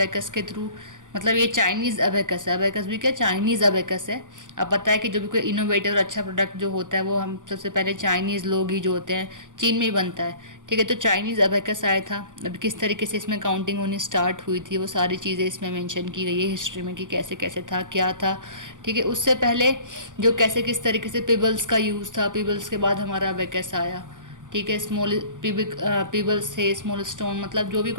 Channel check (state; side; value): late; left; 0.87 ms